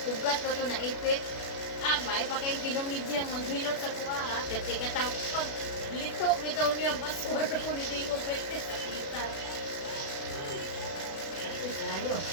Ugat na to naipit. Ah, may pa kayong kinumidyang maghilot sa kuha ha. Kasi katang pag lito bitaw niya basura ko ni Dingo Pwede sa kita. Layo.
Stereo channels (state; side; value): late; right; 36 ms